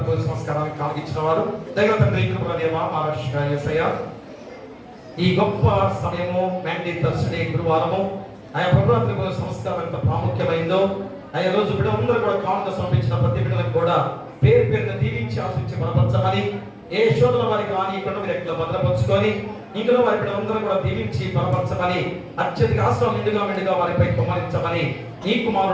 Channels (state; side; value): identical; both; correlation 1.00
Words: సంస్కారానికి కాగిచ్చిన వారు దైవ తండ్రి కృపదేవ మహారాష్ట్ర యేసయ్య, ఈ గొప్ప సమయము మ్యాండీ థర్స్డే గురువారము ఆయా ప్రభుత్వ సంస్కారం ఎంత ప్రాముఖ్యమైందో ఆయా రోజు బిడ్డలందరూ కూడా కానుక సమర్పించిన ప్రతి బిడ్డలకు కూడా పేరు పేరున దీవించి ఆశించి బలపరచమని, ఏ శోధన వారికి రానియకుండా మీరు ఎక్కడ భద్రపరుచుకొని ఇందులో వారి బిడ్డలందరూ కూడా దీవించి బలపరచమని, అత్యధిక ఆశ్రమం మెండుగా వారిపై కుమ్మరించమని ఈ